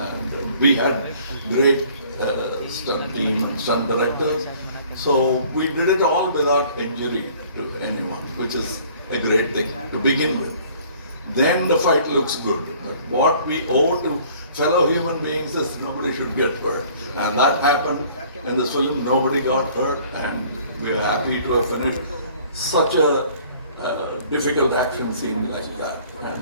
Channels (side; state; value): both; inverted; correlation -0.54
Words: we had great stunt team and stunt directors. So we did it all without injury to anyone, which is a great thing to begin with. Then the fight looks good. But what we owe to fellow human beings is nobody should get hurt. And that happened in this film. Nobody got hurt, and we are happy to have finished such a difficult action scene like that.